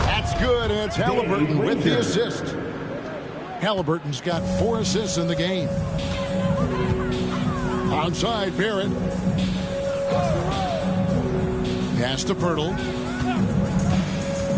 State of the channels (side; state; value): both; identical; correlation 1.00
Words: That's good, and it's Halliburton with the assist. Halliburton's got 4 assists in the game. Onside, Barrett. Pass to Pirtle.